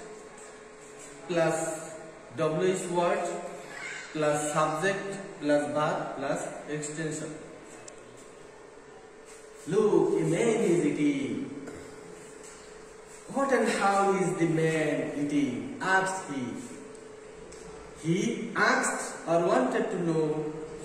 plus W is word plus subject plus verb plus extension. Look, a man is eating. What and how is the man eating? Asked he. He asked or wanted to know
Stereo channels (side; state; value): both; identical; correlation 1.00